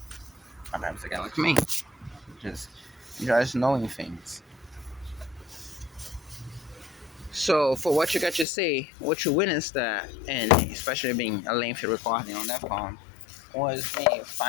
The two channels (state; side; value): drops out; right; at 8.5 s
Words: sometimes a guy like me just enjoys knowing things. So for what you got to see, what you witnessed that, and especially being a lengthy recording on that phone, was me